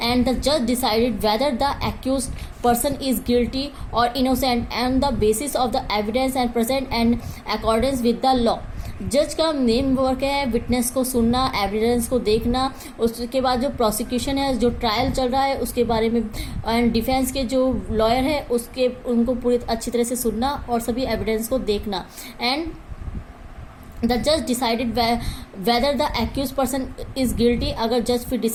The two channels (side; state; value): both; identical; correlation 1.00